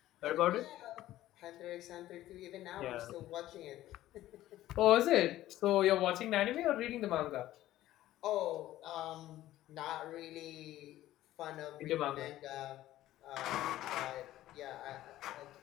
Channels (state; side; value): quieter; right; 14.5 dB